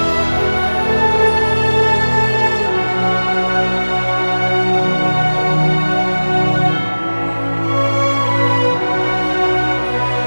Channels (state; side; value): inverted; both; correlation -1.00